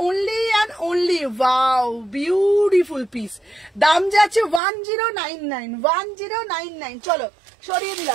only and only, wow beautiful piece, দাম যাচ্ছে 1099, 1099। চলো সরিয়ে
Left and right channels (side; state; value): left; drops out; at 4.6 s